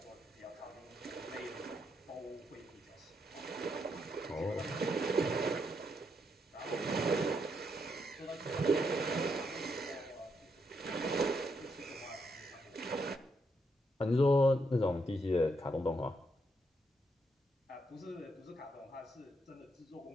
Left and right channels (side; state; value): both; normal; correlation 0.78